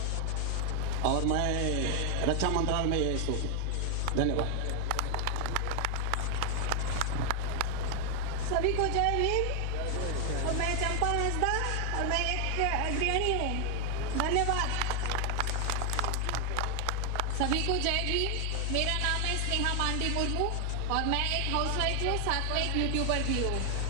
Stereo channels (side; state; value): both; different; correlation 0.00